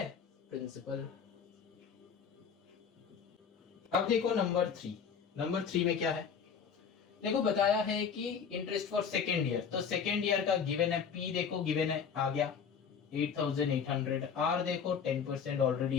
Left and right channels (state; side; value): quieter; right; 6.7 dB